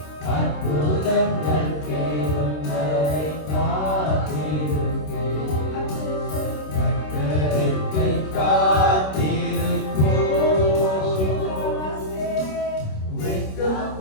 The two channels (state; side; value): late; right; 26 ms